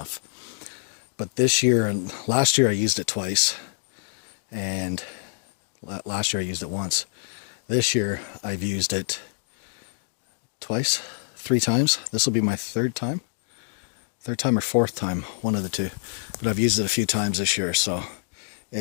But this year and last year I used it twice, and last year I used it once. This year I've used it twice, 3 times. This will be my third time or 4th time, one of the two. But I've used it a few times this year, so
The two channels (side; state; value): right; silent; digital silence